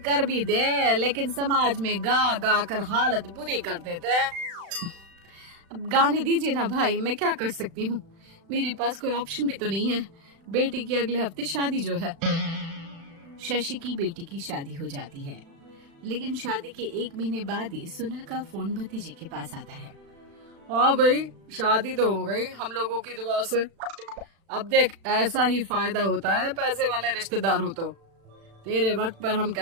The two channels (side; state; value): left; late; 36 ms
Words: कर भी दे लेकिन समाज में गा गा कर हालत बुरी कर देते हैं। अब गाने दीजिए ना भाई, मैं क्या कर सकती हूँ, मेरे पास कोई ऑप्शन भी तो नहीं है। बेटी की अगले हफ्ते शादी जो है। शशि की बेटी की शादी हो जाती है, लेकिन शादी के 1 महीने बाद ही सुनील का फोन भतीजे के पास आता है। हाँ भाई, शादी तो हो गई हम लोगों की दुआ से। अब देख, ऐसा ही फायदा होता है पैसे वाले रिश्तेदार हो तो। तेरे वक्त पर हम